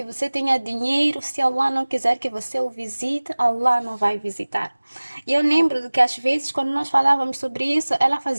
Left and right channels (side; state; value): both; inverted; correlation -1.00